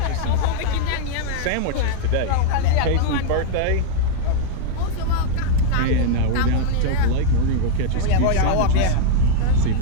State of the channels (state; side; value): different; both; correlation -0.01